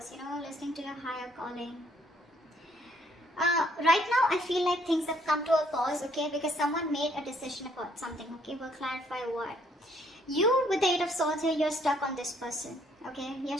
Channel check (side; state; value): both; normal; correlation 0.66